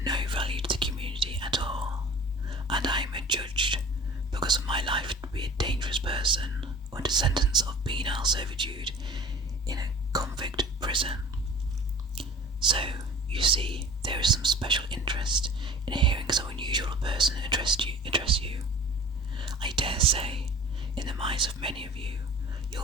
no value to the community at all, and I am adjudged, because of my life, to be a dangerous person under sentence of penal servitude in a convict prison. So, you see, there is some special interest in hearing so unusual a person address you. I dare say, in the minds of many of you, you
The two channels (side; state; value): both; normal; correlation 0.42